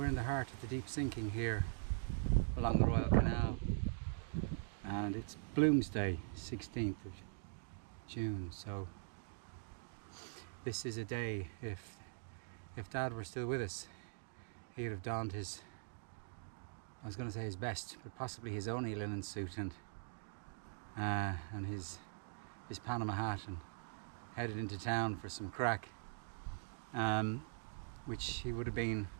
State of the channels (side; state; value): left; silent; digital silence